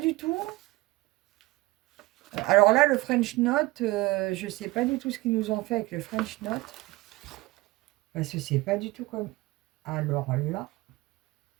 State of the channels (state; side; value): quieter; left; 20.5 dB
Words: du tout. Alors là, le French Note, je ne sais pas du tout ce qu'ils nous ont fait avec le French Note. Parce que c'est pas du tout comme... Alors là...